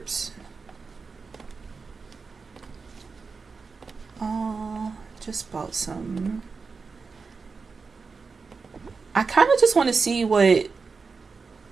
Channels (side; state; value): left; quieter; 4.7 dB